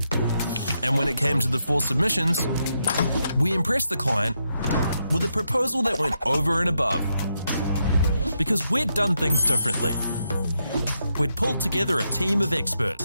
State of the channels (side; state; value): both; inverted; correlation -0.82